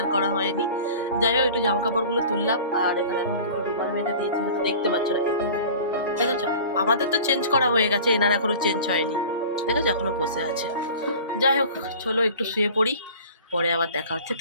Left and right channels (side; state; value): both; inverted; correlation -0.41